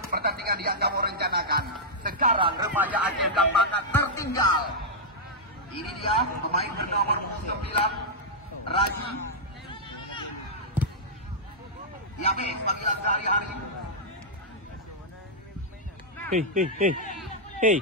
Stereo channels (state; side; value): normal; both; correlation -0.08